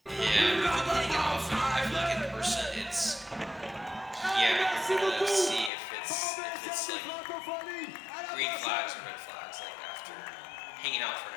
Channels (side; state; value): right; drops out; at 5.7 s